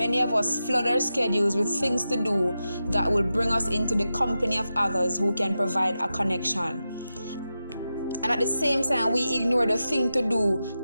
of us flood our schedules with things to do that will bring us into the company of others who can provide a connection. And at the same time, we ignore the thing to do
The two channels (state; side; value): inverted; both; correlation -0.90